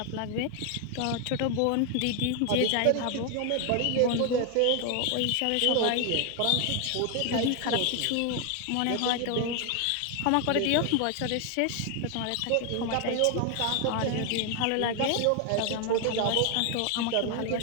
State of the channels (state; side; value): different; both; correlation 0.00